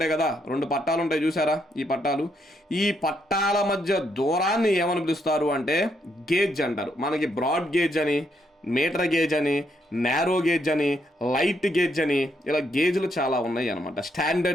కదా, 2 పట్టాలు ఉంటాయి చూసారా? ఈ పట్టాల మధ్య దూరాన్ని ఏమని పిలుస్తారు అంటే గేజ్ అంటారు. మనకి బ్రాడ్ గేజ్ అని, మీటర్ గేజ్ అని, నేరో గేజ్ అని, లైట్ గేజ్ అని, ఇలా గేజ్లు చాలా ఉన్నాయి అనమాట.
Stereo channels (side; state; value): both; normal; correlation 0.76